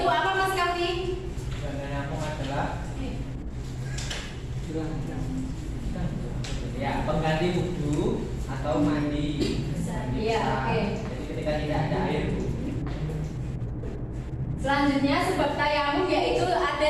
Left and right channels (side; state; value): both; identical; correlation 1.00